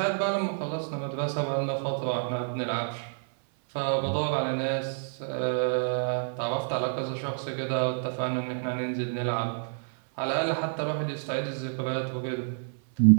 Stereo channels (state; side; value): silent; left; 56 dB below the other